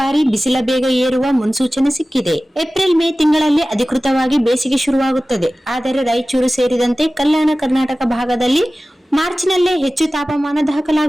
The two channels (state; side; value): normal; both; correlation 0.97